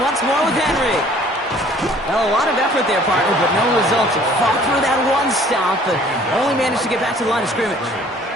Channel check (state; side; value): normal; both; correlation 0.54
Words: more with Henry. Well, a lot of effort there, partner, but no results. Fought through that one stop, but only managed to get back to the line of scrimmage.